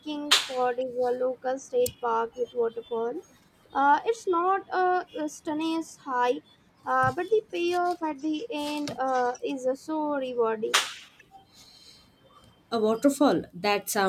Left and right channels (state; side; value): identical; both; correlation 1.00